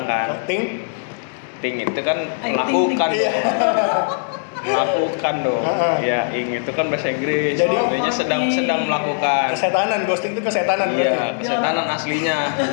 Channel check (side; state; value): right; silent; digital silence